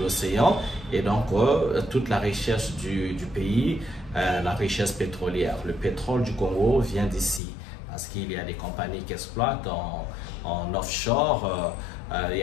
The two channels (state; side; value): drops out; right; at 7.4 s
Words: et donc toute la richesse du pays, la richesse pétrolière. Le pétrole du Congo vient d'ici, parce qu'il y a des compagnies qui exploitent en offshore, il y